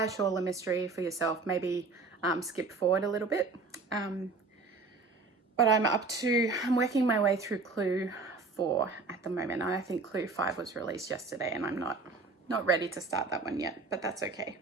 shawl a mystery for yourself, maybe skip forward a little bit. But I'm working my way through Clue 4 at the moment. I think Clue 5 was released yesterday, and I'm not ready to start that one yet, but that's okay.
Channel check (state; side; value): quieter; left; 3.9 dB